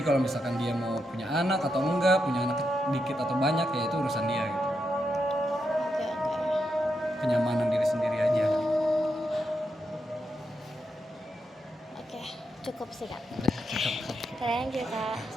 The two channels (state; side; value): normal; both; correlation 0.84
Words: kalau misalkan dia mau punya anak atau enggak, punya anak dikit atau banyak, ya itu urusan dia gitu. Kenyamanan diri sendiri aja. Cukup sih kak. Thank you kak.